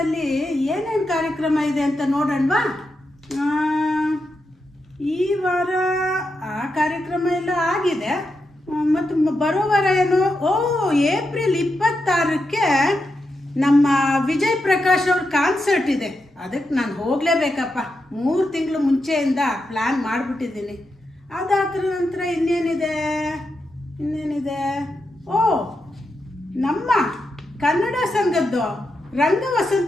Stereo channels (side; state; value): both; normal; correlation 0.86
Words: ಏನೇನು ಕಾರ್ಯಕ್ರಮ ಇದೆ ಅಂತ ನೋಡೋಣವಾ? ಈ ವಾರ ಆ ಕಾರ್ಯಕ್ರಮ ಎಲ್ಲ ಆಗಿದೆ. ಮತ್ತು ಬರೋ ವಾರ ಏನು, ಏಪ್ರಿಲ್ 26ಕ್ಕೆ ನಮ್ಮ ವಿಜಯ್ ಪ್ರಕಾಶ್ ಅವ್ರ ಕಾನ್ಸರ್ಟ್ ಇದೆ. ಅದಕ್ಕೆ ನಾನು ಹೋಗಲೇಬೇಕಪ್ಪ. 3 ತಿಂಗಳು ಮುಂಚೆಯಿಂದ ಪ್ಲ್ಯಾನ್ ಮಾಡಿಬಿಟ್ಟಿದ್ದೀನಿ. ಅದಾದ ನಂತರ ಇನ್ನೇನಿದೆ, ನಮ್ಮ ಕನ್ನಡ ಸಂಘದ್ದು